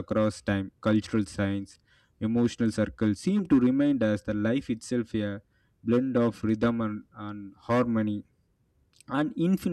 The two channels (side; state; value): both; identical; correlation 1.00